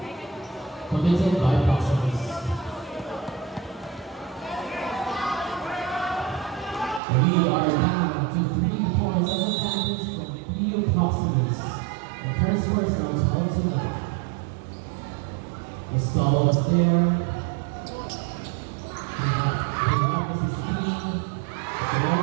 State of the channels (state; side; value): drops out; left; at 7.0 s